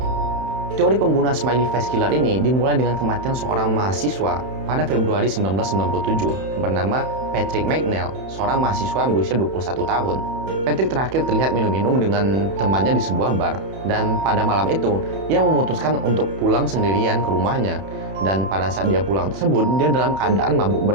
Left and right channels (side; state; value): left; late; 31 ms